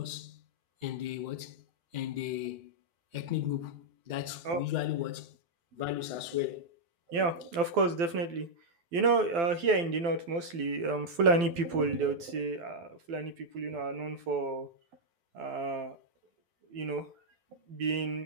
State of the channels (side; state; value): left; late; 12 ms